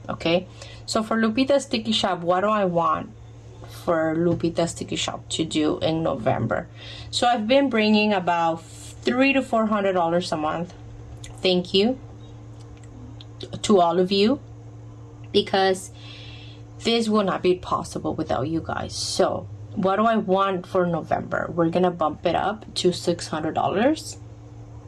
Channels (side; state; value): both; identical; correlation 1.00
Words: Okay, so for Lupita's Sticky Shop, what do I want for Lupita's Sticky Shop to do in November? So I've been bringing about $300 to $400 a month. Thank you to all of you, because this will not be possible without you guys. So what do I want for November? We're gonna bump it up to $600.